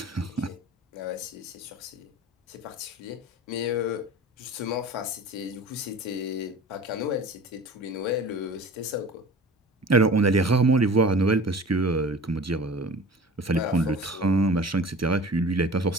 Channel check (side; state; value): both; normal; correlation 0.40